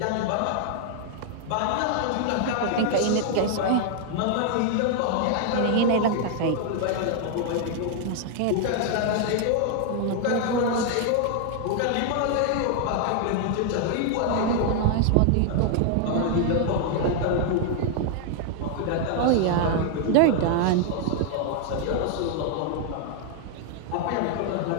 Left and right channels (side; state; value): both; different; correlation 0.00